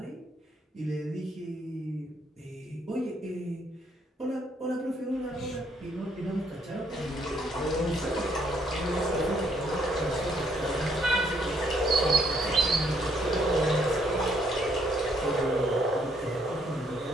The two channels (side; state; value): both; normal; correlation 0.70